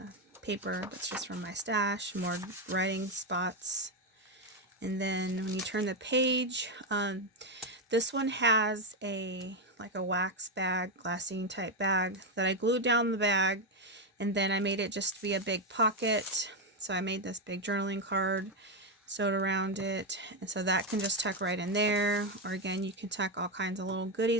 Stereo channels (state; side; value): normal; both; correlation 0.06